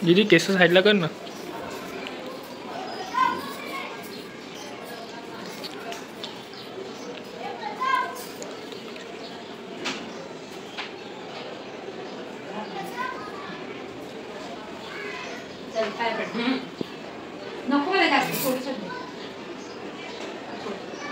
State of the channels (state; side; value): identical; both; correlation 1.00